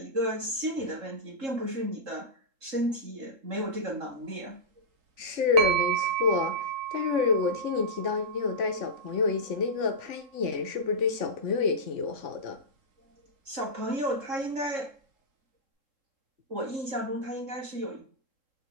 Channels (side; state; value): left; late; 3.7 ms